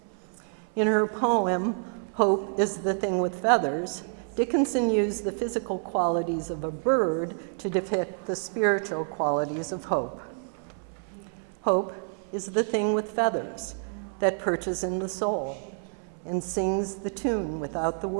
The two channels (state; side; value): silent; left; 59 dB below the other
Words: In her poem, "Hope is the Thing with Feathers," Dickinson used the physical qualities of a bird to depict the spiritual qualities of hope. Hope is the thing with feathers that perches in the soul and sings the tune without the